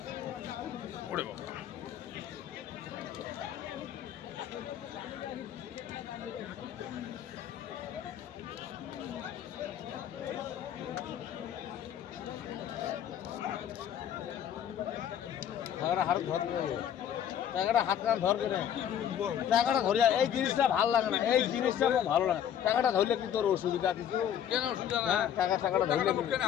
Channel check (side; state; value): right; quieter; 9.7 dB